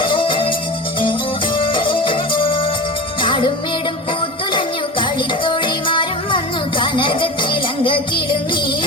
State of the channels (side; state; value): both; normal; correlation 0.29